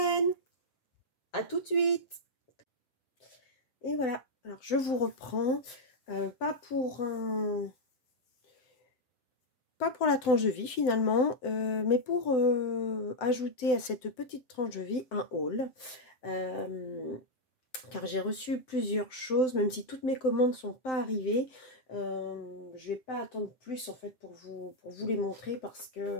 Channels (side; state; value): right; late; 7.9 ms